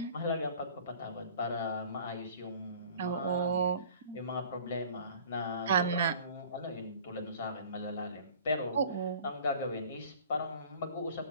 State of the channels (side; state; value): both; inverted; correlation -0.47